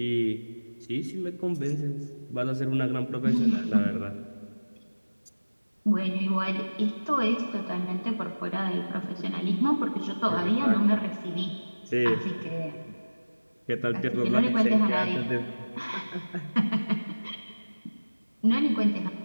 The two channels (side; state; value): both; inverted; correlation -1.00